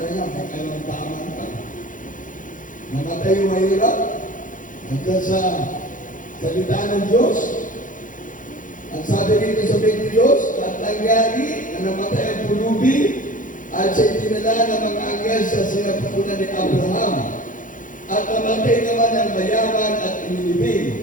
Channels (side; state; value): right; late; 0.38 ms